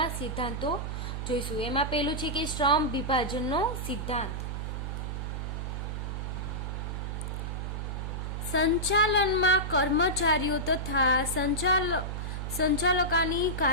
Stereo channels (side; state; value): right; noise; hum, 4 dB below the sound